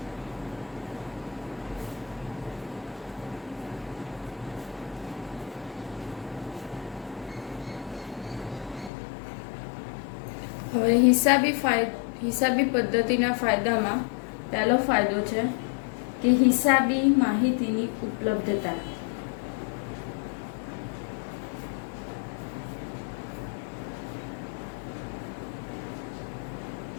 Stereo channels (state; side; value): drops out; right; at 8.9 s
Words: હવે હિસાબી પદ્ધતિના ફાયદામાં પહેલો ફાયદો છે કે હિસાબી માહિતીની ઉપલબ્ધતા.